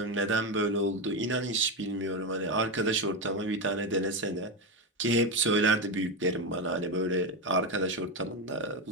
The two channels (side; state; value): both; normal; correlation 0.11